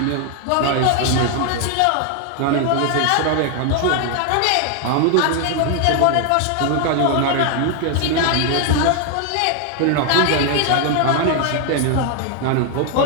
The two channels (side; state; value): both; different; correlation 0.00